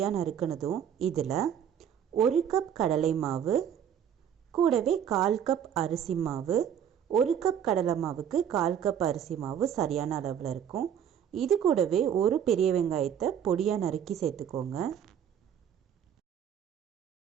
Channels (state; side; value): quieter; left; 8.9 dB